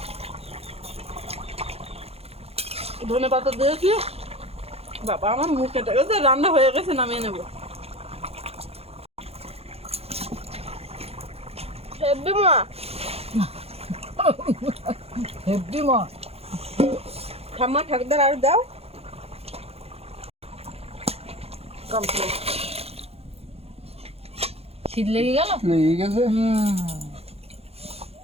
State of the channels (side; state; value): left; late; 0.29 ms